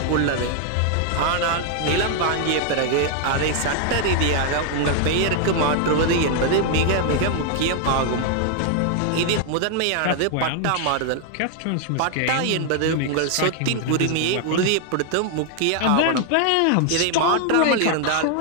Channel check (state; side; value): different; both; correlation 0.00